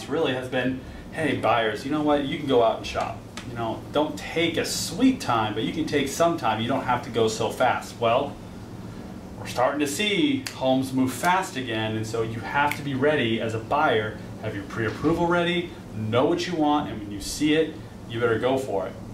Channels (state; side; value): identical; both; correlation 1.00